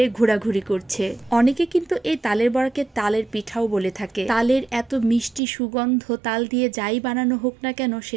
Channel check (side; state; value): left; drops out; at 5.4 s